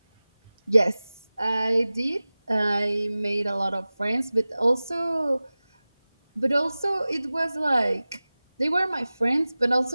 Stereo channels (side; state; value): both; inverted; correlation -0.98